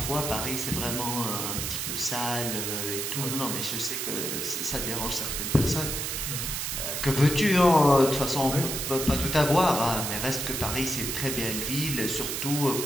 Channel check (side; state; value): right; noise; hiss, 2 dB below the sound